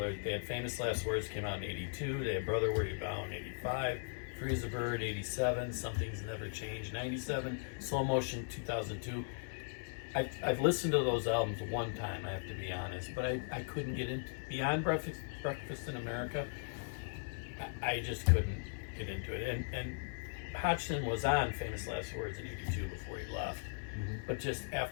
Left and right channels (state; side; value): silent; right; 52 dB below the other